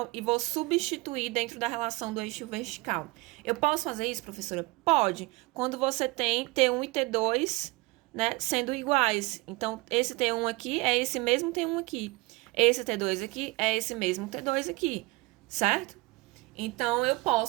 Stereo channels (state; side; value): quieter; left; 23.1 dB